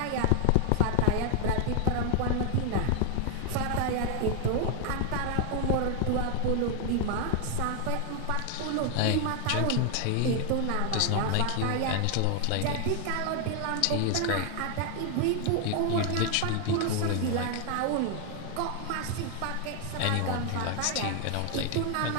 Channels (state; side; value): different; both; correlation 0.00